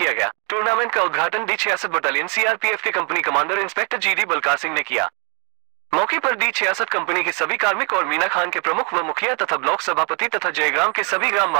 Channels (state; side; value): quieter; left; 36.4 dB